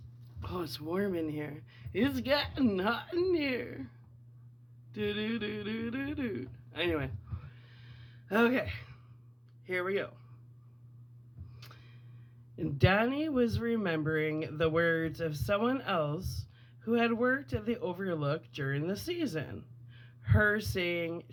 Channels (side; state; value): both; identical; correlation 1.00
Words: Oh, it's warm in here. It's getting hot in here. Do do do do do do. Anyway, okay, here we go. Danny was remembering the words of someone else who had worked at the Overlook during the season. Her saying